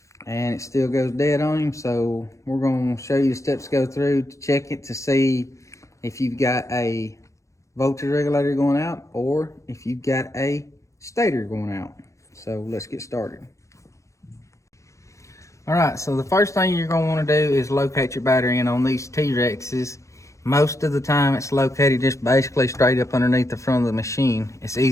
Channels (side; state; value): right; late; 0.15 ms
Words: and it still goes dead on him. So we're going to show you the steps to go through to check it to see if you've got a voltage regulator going out or if you've got a stator going out. So let's get started. All right, so the first thing you're going to want to do is locate your battery. And on these Terexes, most of the time it's located just basically straight up underneath the front of the machine. It's